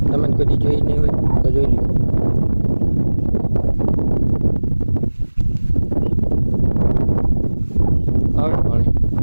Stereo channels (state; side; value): inverted; both; correlation -1.00